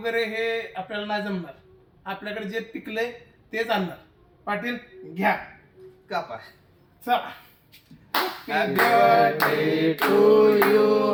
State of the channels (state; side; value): identical; both; correlation 1.00